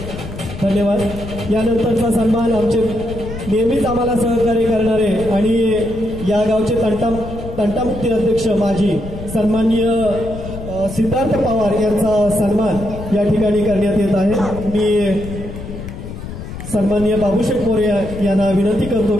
धन्यवाद। यानंतरचा सन्मान आमचे नेहमीच आम्हाला सहकार्य करणारे आणि या गावचे तंटामुक्ती अध्यक्ष माजी सन्माननीय सिद्धार्थ पवार यांचा सन्मान या ठिकाणी करण्यात येत आहे। मी सन्माननीय बाबूशेठ मोरे यांना विनंती करतो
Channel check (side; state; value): left; noise; rumble, 10 dB below the sound